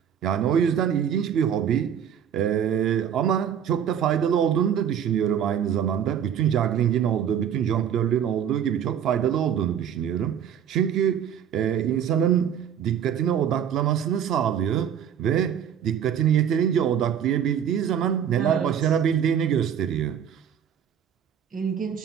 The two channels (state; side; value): quieter; left; 8.8 dB